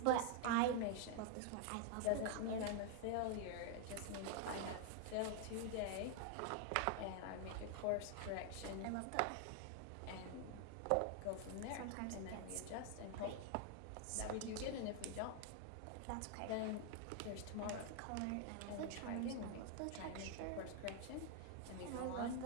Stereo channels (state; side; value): different; both; correlation 0.00